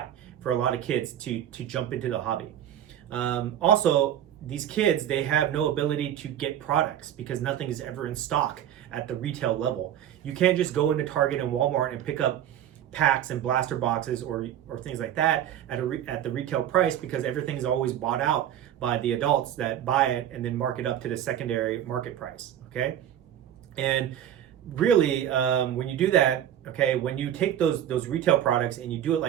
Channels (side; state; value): left; quieter; 10.7 dB